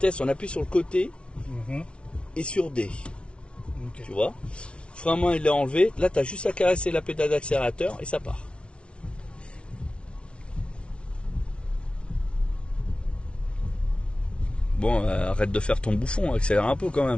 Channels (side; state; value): right; late; 0.059 ms